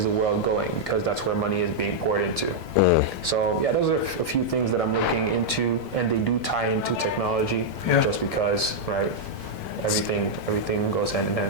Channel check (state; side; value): late; right; 5.4 ms